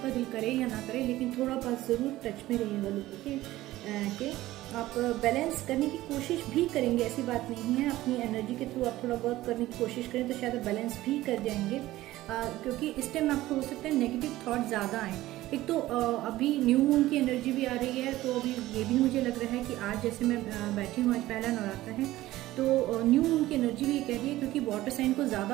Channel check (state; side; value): quieter; left; 16.3 dB